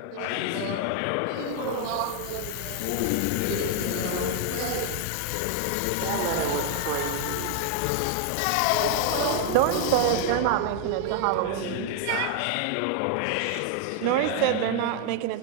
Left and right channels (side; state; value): both; different; correlation 0.00